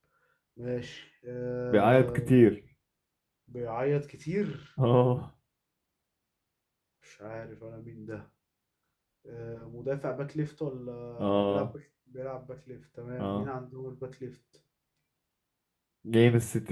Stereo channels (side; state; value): both; identical; correlation 1.00